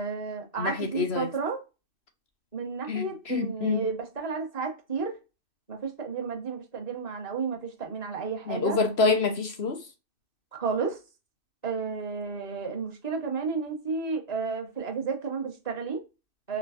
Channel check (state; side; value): late; right; 3.0 ms